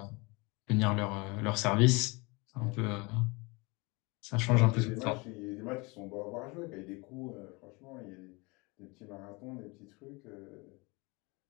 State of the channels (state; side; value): quieter; right; 26.8 dB